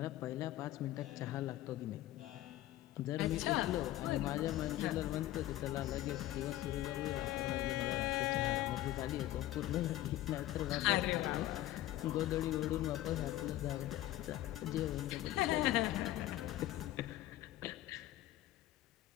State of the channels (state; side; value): quieter; right; 14.9 dB